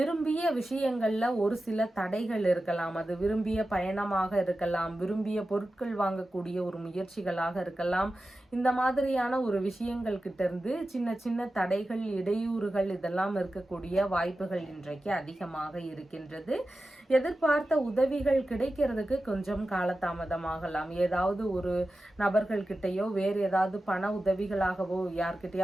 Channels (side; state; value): both; normal; correlation 0.93